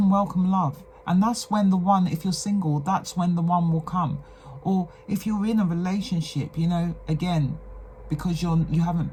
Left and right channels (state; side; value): identical; both; correlation 1.00